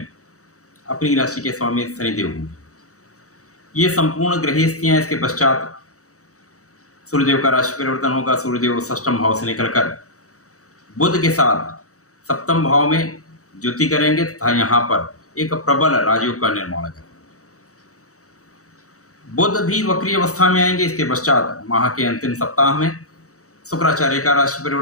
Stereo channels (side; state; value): right; late; 0.65 ms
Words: अपनी राशि के स्वामी शनिदेव होंगे। ये संपूर्ण ग्रह स्थितियां। इसके पश्चात सूर्यदेव का राशि परिवर्तन होगा। सूर्यदेव षष्ठम भाव से निकलकर बुध के साथ सप्तम भाव में ज्योति करेंगे तथा यहाँ पर एक प्रबल राजयोग का निर्माण करेंगे। बुध भी वक्री अवस्था में आएंगे। इसके पश्चात माह के अंतिम सप्ताह में शुक्राचार्य का राशि